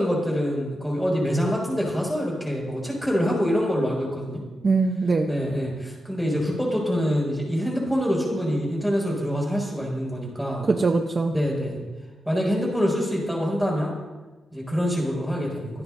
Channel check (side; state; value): both; normal; correlation 0.89